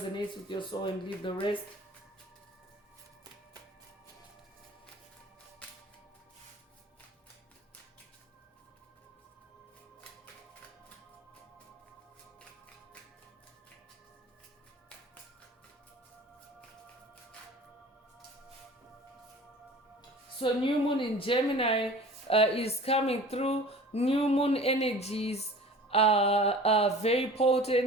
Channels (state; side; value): normal; both; correlation 0.42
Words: with your soul and leave the rest. So new moon in Gemini is coming through. New moon energies are very